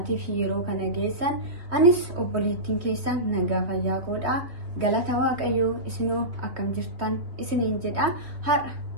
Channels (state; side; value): late; left; 3.2 ms